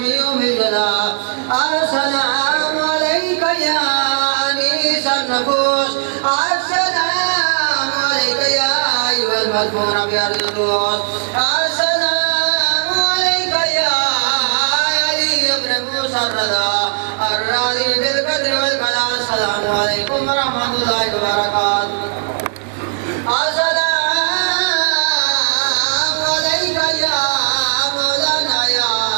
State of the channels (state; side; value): silent; left; 60 dB below the other